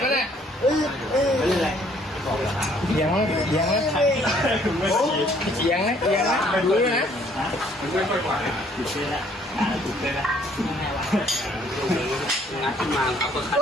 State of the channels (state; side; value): normal; both; correlation 0.62